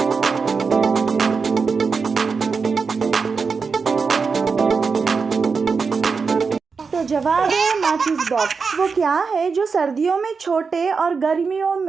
तो जवाब है माचिस बॉक्स। वो क्या है जो सर्दियों में छोटे और गर्मियों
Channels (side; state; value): left; quieter; 5.1 dB